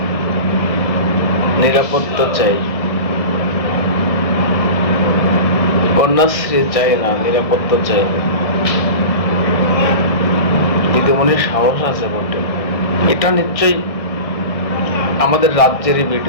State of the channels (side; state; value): right; late; 1.6 ms